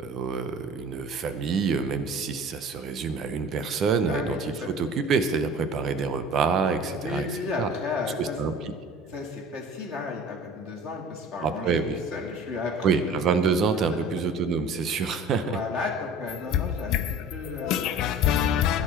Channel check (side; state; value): both; normal; correlation 0.43